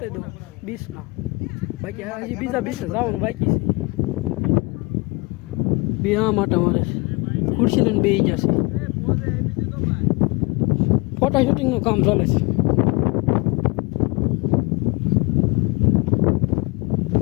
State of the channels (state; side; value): quieter; right; 26.8 dB